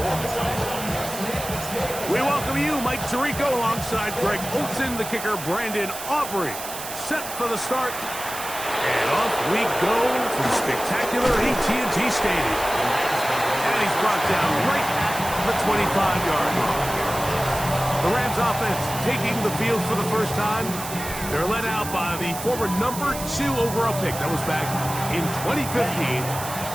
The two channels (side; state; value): right; noise; hiss, 9 dB below the sound